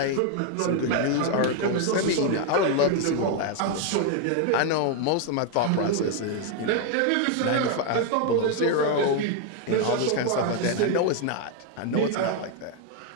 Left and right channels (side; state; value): both; different; correlation 0.01